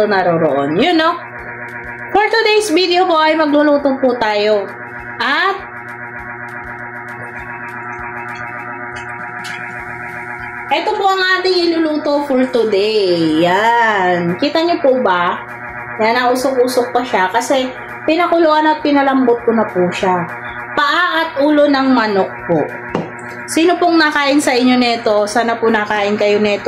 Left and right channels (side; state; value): both; identical; correlation 1.00